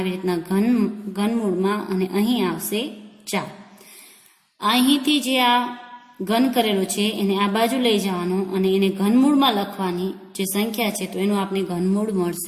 રીતના ઘનમૂળમાં અને અહીં આવશે 4. અહીંથી જે આ ઘન કરેલો છે એને આ બાજુ લઈ જવાનું અને એને ઘનમૂળમાં લખવાની જે સંખ્યા છે તો એનું આપણે ઘનમૂળ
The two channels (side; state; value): both; identical; correlation 1.00